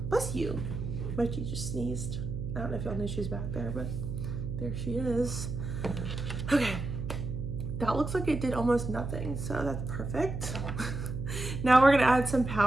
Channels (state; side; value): noise; right; hum, 5 dB below the sound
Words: bless you. Mikey just sneezed. I don't know if y'all know she's back there, but there she is. Okay. That looks like it did almost nothing, so that's perfect. Now we're gonna add some